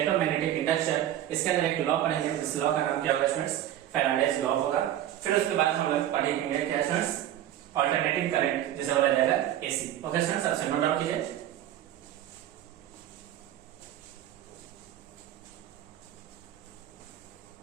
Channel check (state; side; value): quieter; left; 12.1 dB